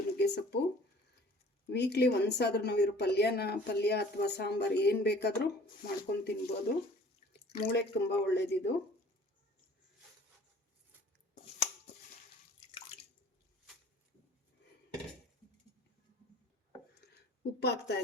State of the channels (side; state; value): both; normal; correlation 0.50